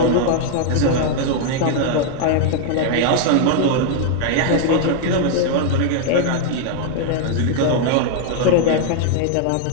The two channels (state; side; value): different; both; correlation 0.00